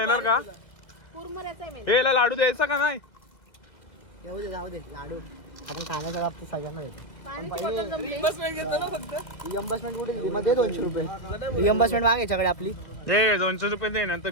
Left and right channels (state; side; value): late; right; 2.2 ms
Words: का? कुरमुऱ्याचा आहे मेन. हे याला लाडू द्यायचा का नाही? येऊ दे, जाऊ दे. लाडू आपण खाण्याच्या बाबतीत सगळ्यांना देतो. पाण्याची बॉटल जमली. रिअम्बर्समेंट कुठे दिली मग? दे 200 रुपये रिअम्बर्समेंट माग याच्याकडे आपली. हे 200 रुपये दे, नंतर